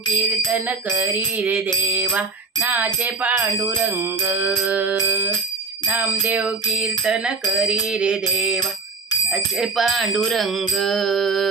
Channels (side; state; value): left; quieter; 4.2 dB